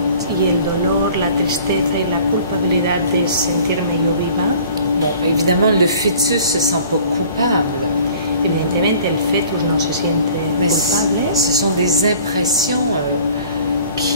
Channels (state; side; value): inverted; both; correlation -0.50